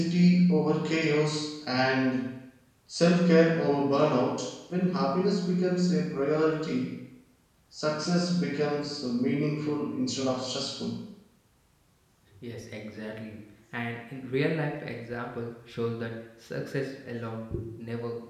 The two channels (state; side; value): identical; both; correlation 1.00